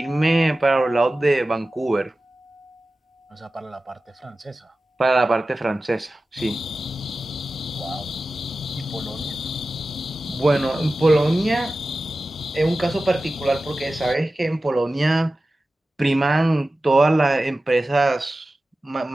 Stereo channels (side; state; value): both; normal; correlation 0.95